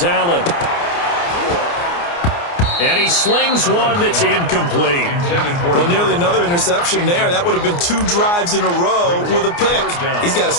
Allen. And he slings one that's incomplete. Well, nearly another interception there. That would have been 2 drives in a row with a pick. He's got to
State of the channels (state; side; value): late; right; 29 ms